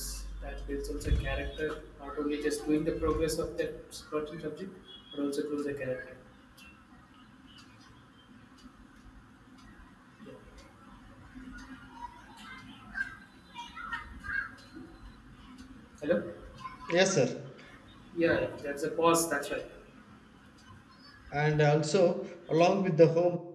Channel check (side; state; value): both; identical; correlation 1.00